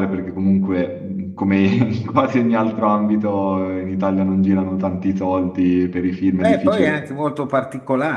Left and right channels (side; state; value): both; identical; correlation 1.00